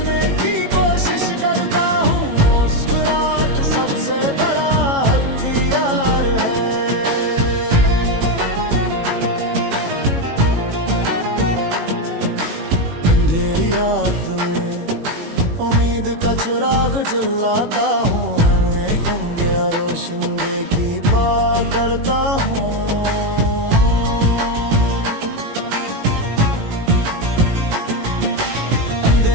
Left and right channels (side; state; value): left; late; 18 ms